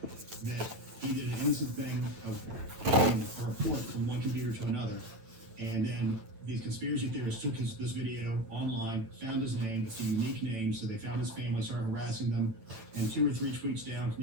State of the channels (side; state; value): left; late; 9.0 ms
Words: that he did an innocent thing of getting a report from one computer to another. And then these conspiracy theorists took this video online, found his name, it's a unique name, so they found his family, started harassing them, and 2 or 3 tweets down